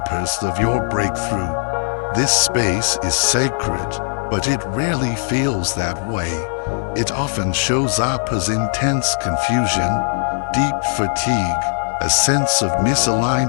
of your breakthrough. This space is sacred, but it rarely feels that way. It often shows up as intense confusion, deep fatigue, a sense of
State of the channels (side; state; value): right; silent; digital silence